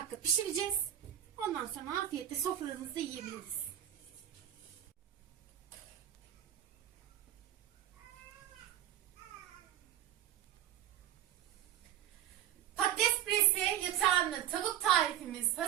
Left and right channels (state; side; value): quieter; left; 11.3 dB